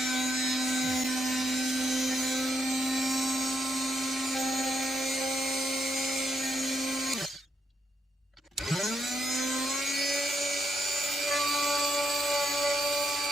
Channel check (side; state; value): both; normal; correlation 0.79